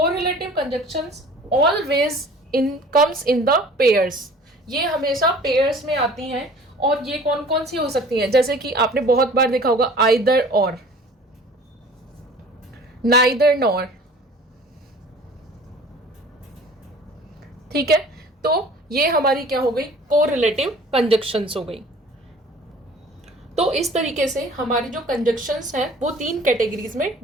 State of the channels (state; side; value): normal; both; correlation 0.47